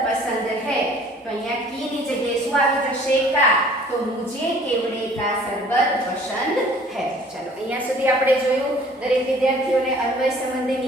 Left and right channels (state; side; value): normal; both; correlation 0.53